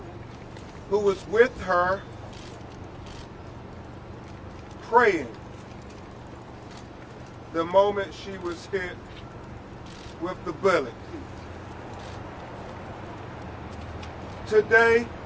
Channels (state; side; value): identical; both; correlation 1.00